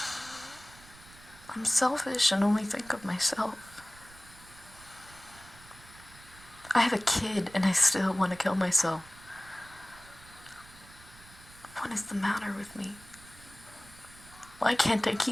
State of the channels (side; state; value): right; noise; rumble, 22 dB below the sound